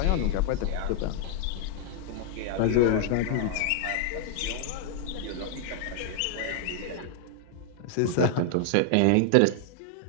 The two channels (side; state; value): both; different; correlation 0.00